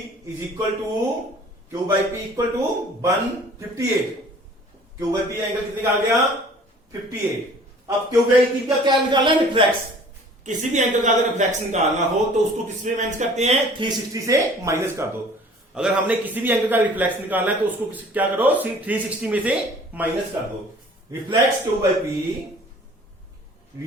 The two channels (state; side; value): normal; both; correlation 0.50